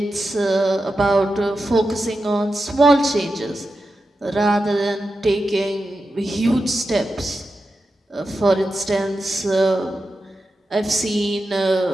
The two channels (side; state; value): both; normal; correlation 0.90